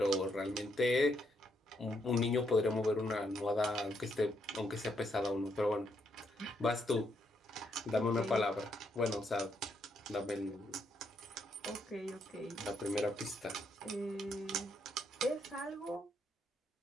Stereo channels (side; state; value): both; normal; correlation 0.76